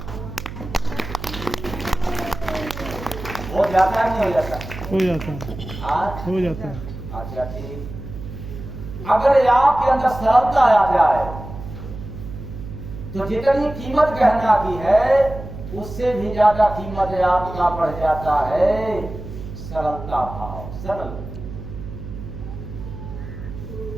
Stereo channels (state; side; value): noise; right; hum, 10 dB below the sound